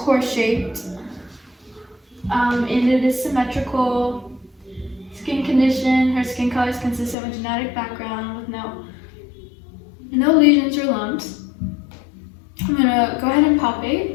and it is symmetrical. Skin condition, her skin color is consistent with genetic background with no lesions or lumps. I'm gonna go ahead and palpate.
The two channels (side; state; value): right; drops out; at 7.2 s